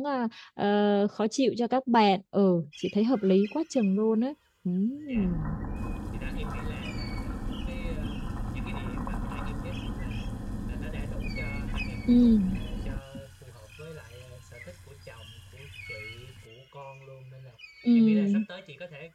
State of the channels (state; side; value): identical; both; correlation 1.00